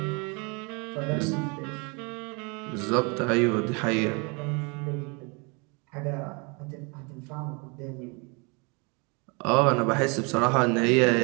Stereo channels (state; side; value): quieter; left; 31.5 dB